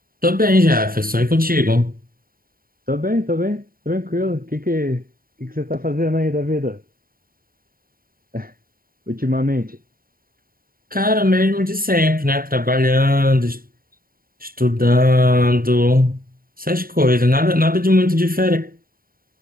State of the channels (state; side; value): late; left; 0.42 ms